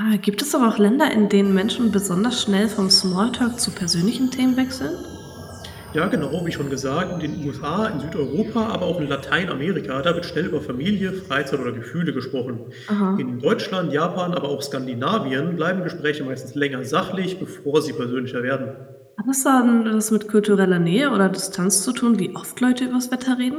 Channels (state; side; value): identical; both; correlation 1.00